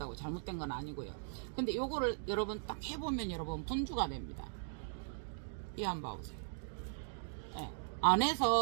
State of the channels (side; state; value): left; silent; digital silence